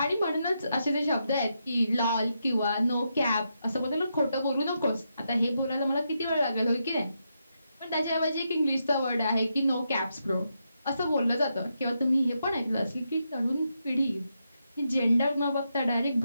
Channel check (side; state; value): both; inverted; correlation -0.83